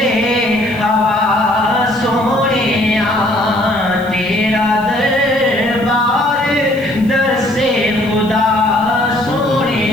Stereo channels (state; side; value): noise; right; hiss, 24 dB below the sound